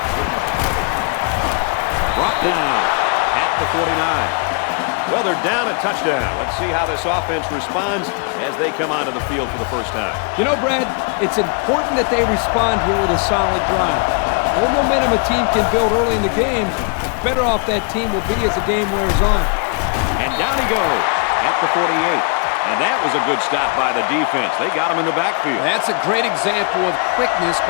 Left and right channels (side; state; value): right; quieter; 37.8 dB